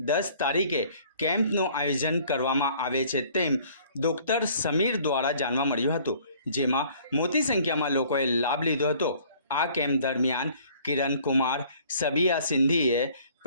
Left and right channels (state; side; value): inverted; both; correlation -0.56